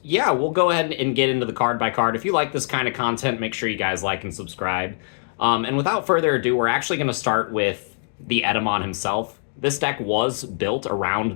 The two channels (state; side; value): silent; right; digital silence